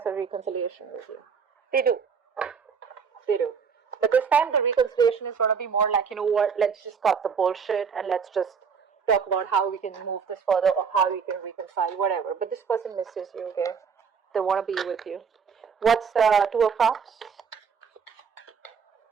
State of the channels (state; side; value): quieter; left; 6.2 dB